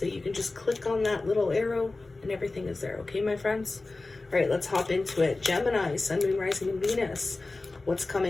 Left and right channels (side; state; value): right; quieter; 3.3 dB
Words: you can just click on that little arrow and everything is there. Okay, my friends? All right, let's hop into it. Gemini, Sun, Moon, Rising, and Venus. What's